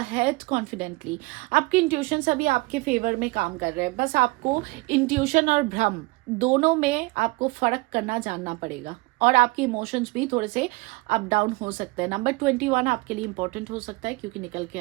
confidently. आपकी इंट्यूशन अभी आपके फेवर में काम कर रहे हैं, बस आपको इंट्यूशन और भ्रम दोनों में आपको फर्क करना जानना पड़ेगा, और आपके इमोशंस भी थोड़े से अप डाउन हो सकते हैं। नंबर 21 आपके लिए इंपॉर्टेंट हो सकता है क्योंकि निकल के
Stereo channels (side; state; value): left; quieter; 24.0 dB